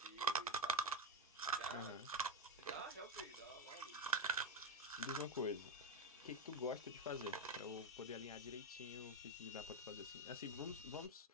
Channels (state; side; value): normal; both; correlation 0.10